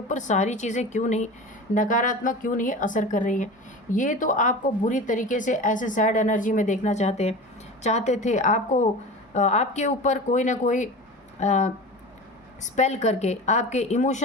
सारी चीज़ें क्यों नहीं, नकारात्मक क्यों नहीं असर कर रही हैं। ये तो आपको बुरी तरीके से ऐसे सैड एनर्जी में देखना चाहते थे, आपको आपके ऊपर कोई ना कोई स्पेल करके आपके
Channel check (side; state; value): both; normal; correlation 0.33